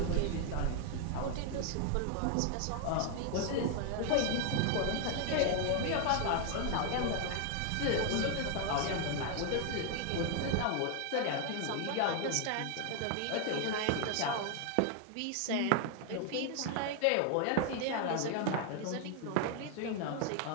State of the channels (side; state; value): both; different; correlation 0.00